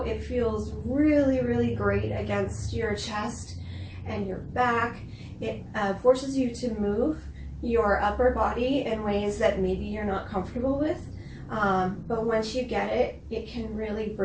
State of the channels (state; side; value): identical; both; correlation 1.00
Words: It feels really, really great against your chest and your back. It forces you to move your upper body in ways that maybe you're not comfortable with. But once you get it, it can really